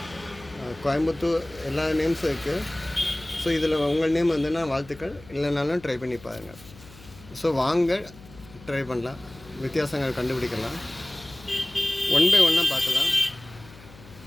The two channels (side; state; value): left; noise; hum, 21 dB below the sound